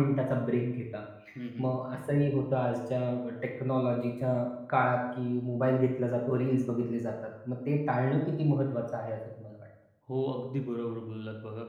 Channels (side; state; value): both; identical; correlation 1.00